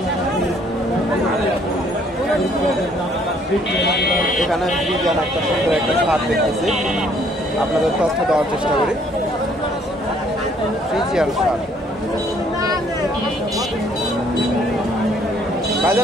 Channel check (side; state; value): both; normal; correlation 0.63